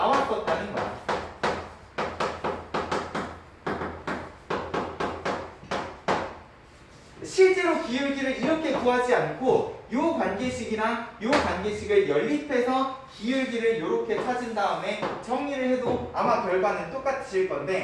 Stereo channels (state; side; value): identical; both; correlation 1.00